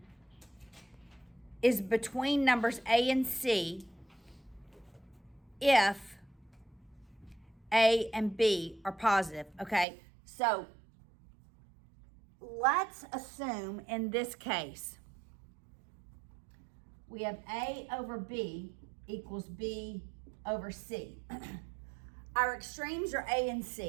is between numbers A and C if A and B are positive, okay? So let's assume in this case, we have A over B equals B over C. Our extremes are A and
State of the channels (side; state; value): left; drops out; at 9.9 s